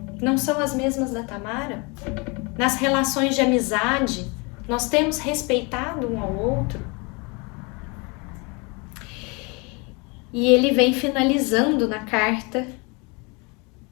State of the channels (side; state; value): right; quieter; 29.7 dB